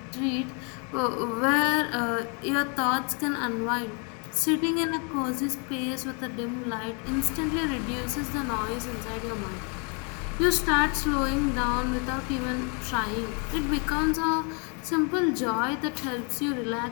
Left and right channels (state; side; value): quieter; right; 36.4 dB